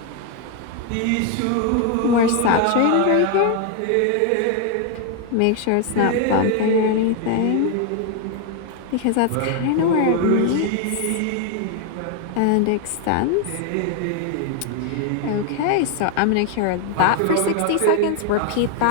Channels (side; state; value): both; different; correlation 0.01